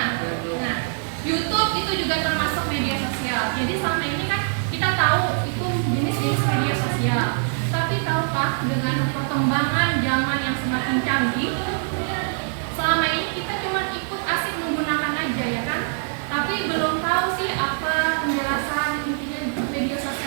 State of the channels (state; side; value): silent; left; digital silence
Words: YouTube itu juga termasuk media sosial. Jadi selama ini kan kita tahu itu jenis-jenis media sosial. Tapi tahukah dengan perkembangan zaman yang semakin canggih, selama ini kita cuma ikut asik menggunakan aja ya kan? Tapi belum tahu sih apa penjelasan intinya media